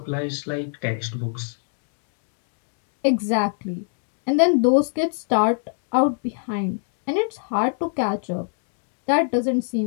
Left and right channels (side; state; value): right; silent; 57 dB below the other